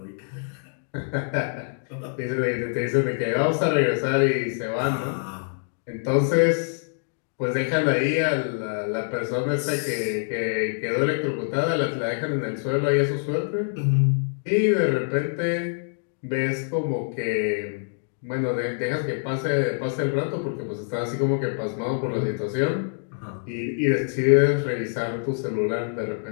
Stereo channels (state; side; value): silent; right; digital silence